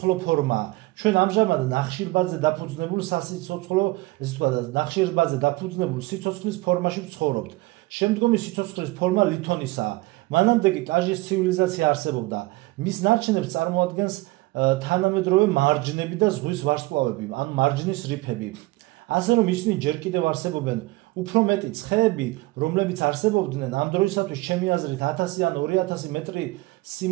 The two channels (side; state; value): left; quieter; 21.0 dB